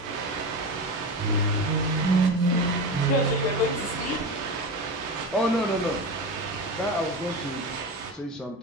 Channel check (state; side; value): normal; both; correlation 0.24